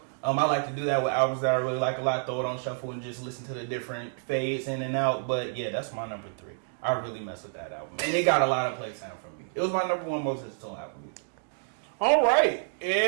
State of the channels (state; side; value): silent; left; digital silence